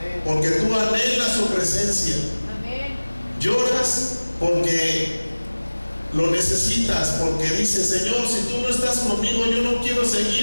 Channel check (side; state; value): both; inverted; correlation -1.00